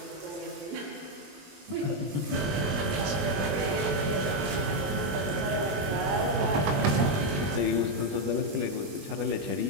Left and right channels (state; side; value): late; left; 21 ms